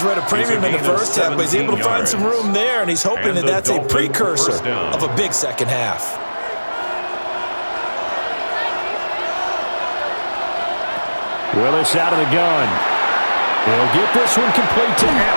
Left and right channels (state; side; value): inverted; both; correlation -1.00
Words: were at a premium in the first half, but he's able to find some room there, and he's hoping that that's a precursor of a big second half. Willis out of the gun. He'll get this one complete to